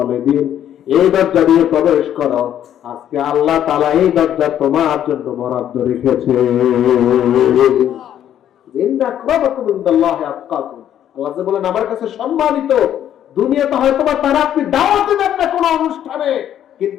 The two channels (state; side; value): quieter; right; 10.6 dB